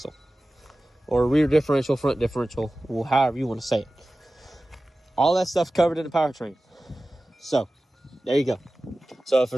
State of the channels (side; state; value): both; normal; correlation 0.96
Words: or rear differential, front differential, well, however you want to say it. All that stuff covered in the powertrain. So there you go. So if for